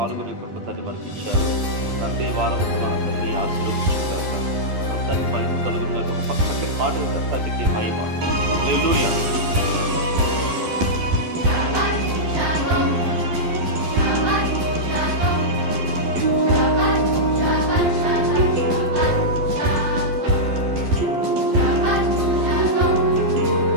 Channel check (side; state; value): left; late; 12 ms